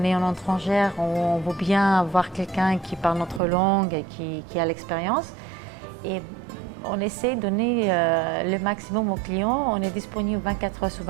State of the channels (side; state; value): left; drops out; at 3.4 s